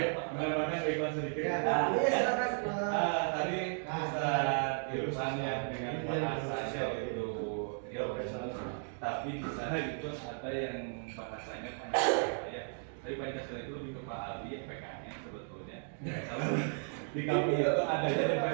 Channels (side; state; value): left; silent; 54 dB below the other